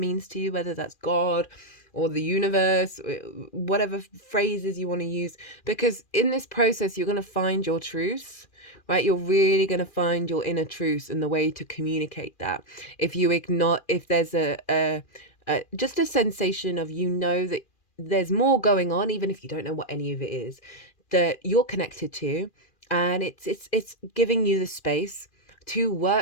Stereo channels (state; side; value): late; right; 2.4 ms